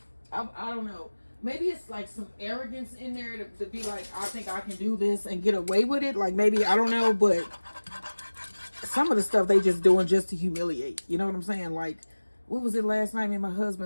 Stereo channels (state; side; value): inverted; both; correlation -1.00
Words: I don't know. Maybe it's like some arrogance in there to be like, I think I can do this and get away with it. Like maybe, I don't know, but some of the stuff they just doing just to humiliate. You know what I'm saying? Like, what was it last night? Me and my